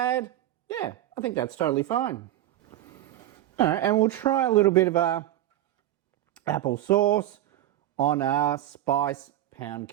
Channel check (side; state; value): left; quieter; 13.4 dB